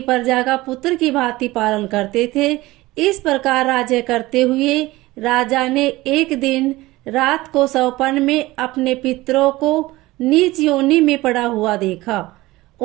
प्रजा का पुत्र की भांति पालन करते थे। इस प्रकार राज्य करते हुए राजा ने एक दिन रात को सौपन में अपने पितरों को नीच योनि में पड़ा हुआ देखा।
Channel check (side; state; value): left; quieter; 19.1 dB